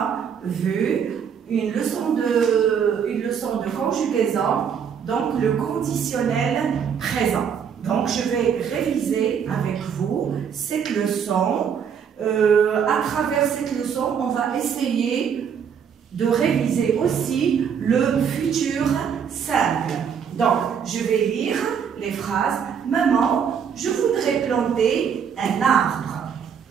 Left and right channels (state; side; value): quieter; left; 7.4 dB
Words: vue, une leçon de conjugaison, donc le conditionnel présent. Donc, je vais réviser avec vous cette leçon. À travers cette leçon, on va essayer de réviser aussi le futur simple. Donc, je vais lire les phrases. Maman, je voudrais planter un arbre.